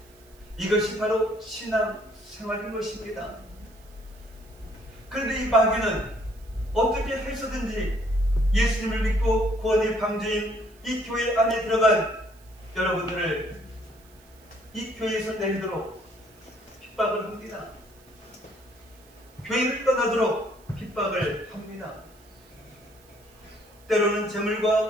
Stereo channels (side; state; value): right; noise; hiss, 28 dB below the sound